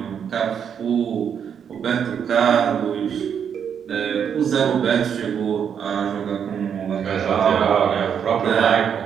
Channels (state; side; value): quieter; left; 7.9 dB